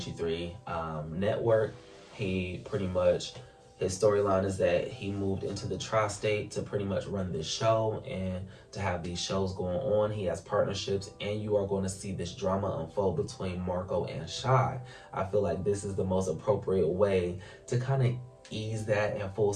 3 Network. He pretty much, his storyline is that he moved into the tri-state to pretty much run this show and to have these shows going on. He has partnerships, and you are going to see this drama unfold between Marcco and Shy. I feel like this is the most appropriate way to kind of ease that and full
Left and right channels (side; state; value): both; identical; correlation 1.00